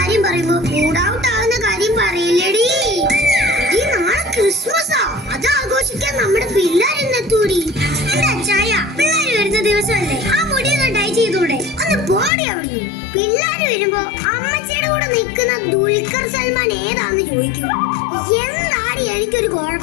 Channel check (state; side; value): drops out; right; at 12.3 s